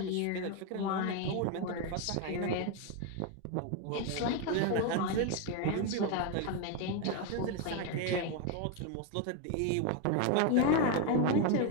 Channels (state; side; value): different; both; correlation 0.02